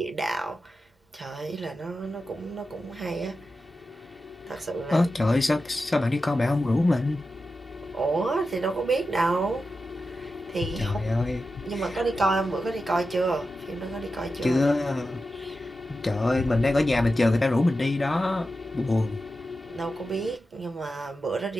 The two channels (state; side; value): normal; both; correlation 0.91